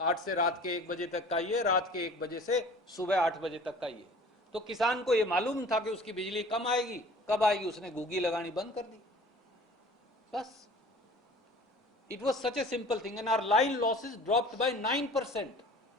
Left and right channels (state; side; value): normal; both; correlation 0.46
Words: 8 से रात के 1 बजे तक का ये, रात के 1 बजे से सुबह 8 बजे तक का ये. तो किसान को ये मालूम था कि उसकी बिजली कम आएगी, कब आएगी, उसने गुग्गी लगानी बंद कर दी. बस it was such a simple thing, and our line losses dropped by 9%